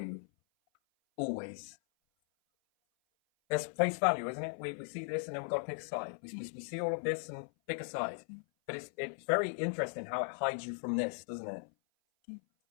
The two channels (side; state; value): right; silent; 53 dB below the other